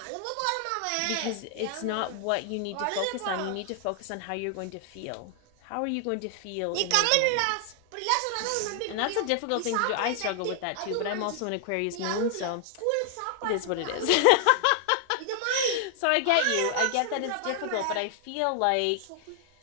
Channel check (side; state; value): both; different; correlation 0.00